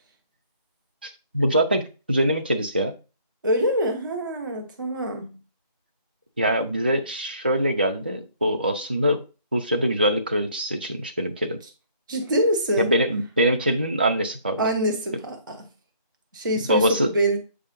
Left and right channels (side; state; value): both; inverted; correlation -0.59